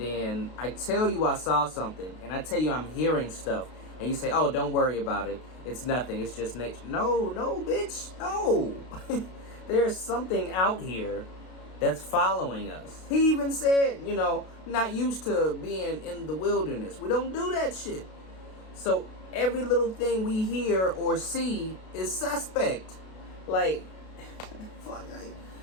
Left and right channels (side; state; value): right; late; 32 ms